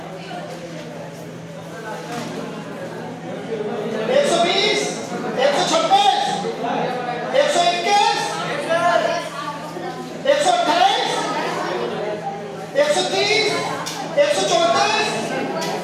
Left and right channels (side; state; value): both; identical; correlation 1.00